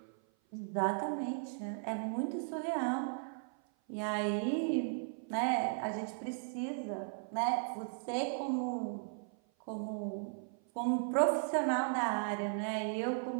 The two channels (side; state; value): left; silent; 53 dB below the other